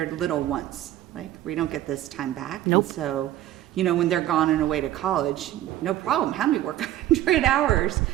little once. Like, we don't get this time back. Nope. And so, you know, when they're gone and away to college, no problem. Have me work 100 hours,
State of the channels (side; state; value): left; quieter; 13.5 dB